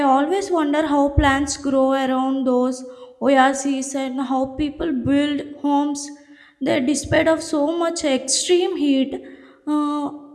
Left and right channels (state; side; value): identical; both; correlation 1.00